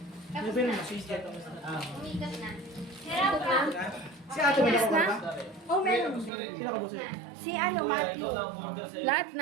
Ano ba yun? Masisya ito. Ah. Umigas na. Hirap ka. Si ate ba nakapag ba? Oh, meron. Sino ka buso? Si ano, Matthew. Lahat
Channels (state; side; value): drops out; left; at 6.3 s